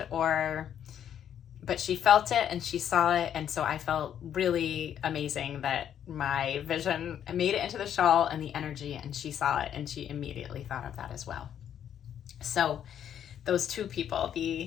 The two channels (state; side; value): quieter; right; 9.6 dB